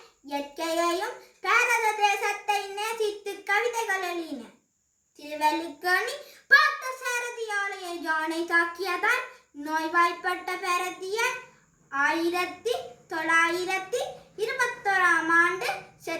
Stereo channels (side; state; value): both; identical; correlation 1.00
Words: இயற்கையையும் பாரத தேசத்தை நேசித்து கவிதைகள் எழுதினர். திருவள்ளுவனி பார்த்த சாரதி ஆலய யானை தாக்கியதால் நோய்வாய்ப்பட்ட பாரதியார் 1921ஆம் ஆண்டு